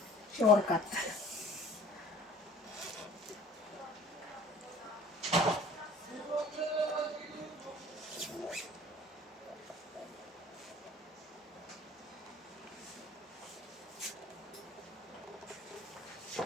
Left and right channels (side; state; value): both; normal; correlation 0.48